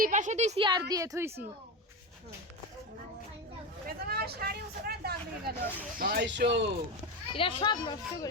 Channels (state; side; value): normal; both; correlation 0.19